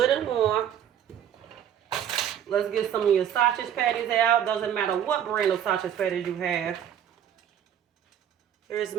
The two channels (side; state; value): left; quieter; 9.7 dB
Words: and warm. Let's get some of your sausage patties out. Doesn't matter what brand of sausage patties you have. Here's